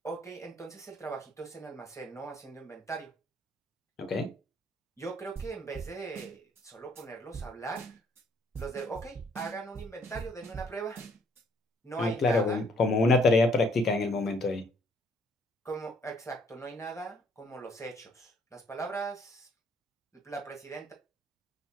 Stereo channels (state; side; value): normal; both; correlation 0.65